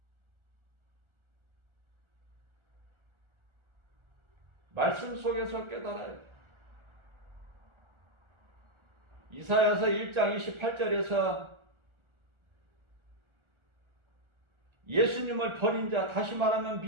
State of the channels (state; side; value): late; left; 1.4 ms